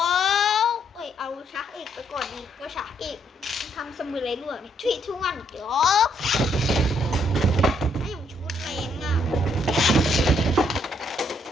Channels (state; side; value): normal; both; correlation 0.71